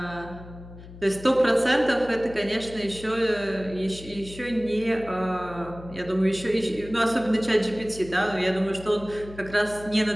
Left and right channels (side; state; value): left; noise; hum, 16 dB below the sound